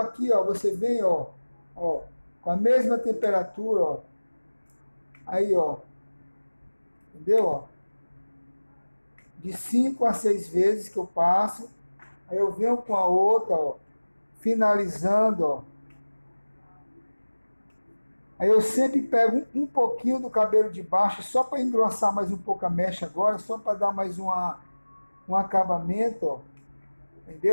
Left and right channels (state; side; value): inverted; both; correlation -1.00